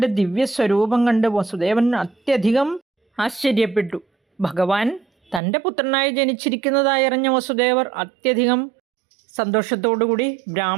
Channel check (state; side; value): drops out; left; at 5.4 s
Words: ദിവ്യസ്വരൂപം കണ്ട് വസുദേവൻ അത്യധികം ആശ്ചര്യപ്പെട്ടു. ഭഗവാൻ തൻ്റെ പുത്രനായി ജനിച്ചിരിക്കുന്നതായി അറിഞ്ഞ വസുദേവർ അത്യധികം സന്തോഷത്തോടുകൂടി